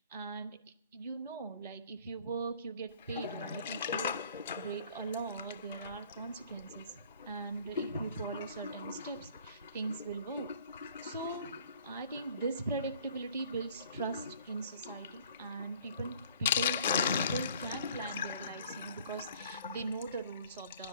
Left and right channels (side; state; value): both; inverted; correlation -0.54